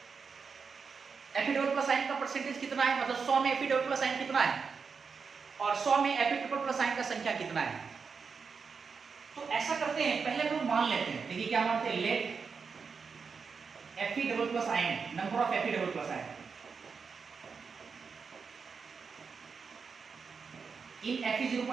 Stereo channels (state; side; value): quieter; left; 5.5 dB